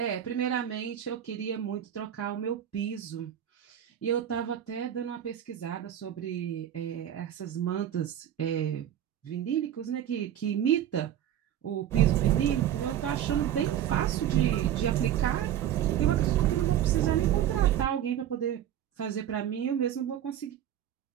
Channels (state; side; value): quieter; left; 10.8 dB